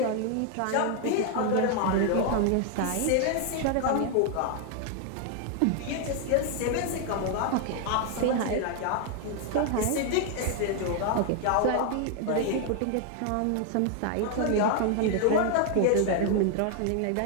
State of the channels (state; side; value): different; both; correlation 0.00